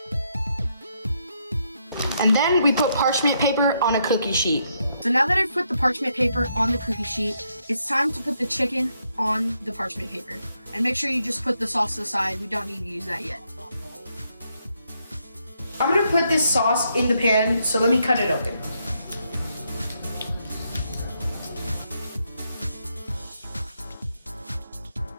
And then we put parchment paper on a cookie sheet. So now that I've put the parchment paper on the cookie sheet, it's time to put the chicken on the parchment paper. And make sure you just put the sauce aside. We don't need to use that yet. I'm going to put this sauce in the pan, so let me cut it open.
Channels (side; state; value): both; inverted; correlation -0.77